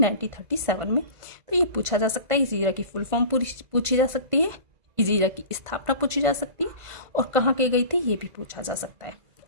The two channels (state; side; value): late; left; 1.5 ms